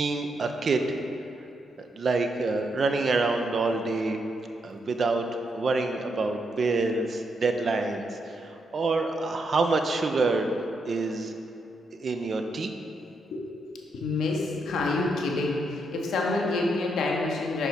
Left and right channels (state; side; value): normal; both; correlation 0.79